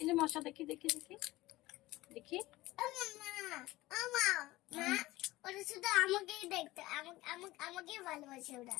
এই যে মশা, দেখি দেখি দেখি দেখি।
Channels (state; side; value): quieter; right; 18.3 dB